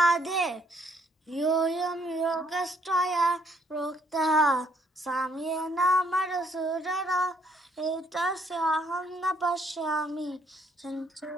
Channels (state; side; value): normal; both; correlation 0.67